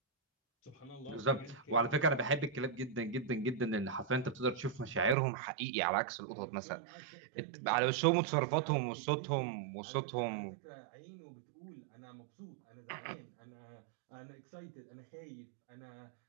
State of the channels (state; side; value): drops out; left; at 5.2 s